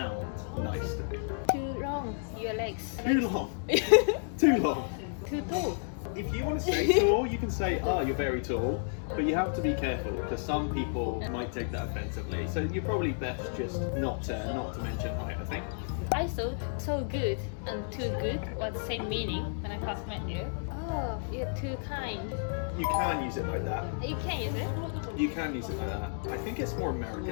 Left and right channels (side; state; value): right; silent; digital silence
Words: nice to me. Too long, your legs. Too long. Too long. Too tall. If you want to say tall, you can say, oh, you're very tall. But you have to be careful because some people might take that offensively. So you're probably best just not to mention height, I think. I thought so good and too good was the same meaning when I first met you. Oh, you're too kind. You can use it like that. You can use it? You can use it like that. I think it's more